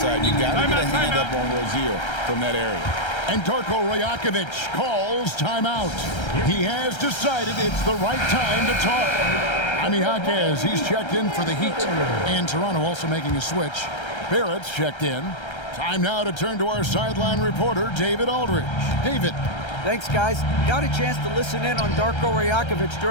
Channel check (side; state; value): right; late; 1.3 ms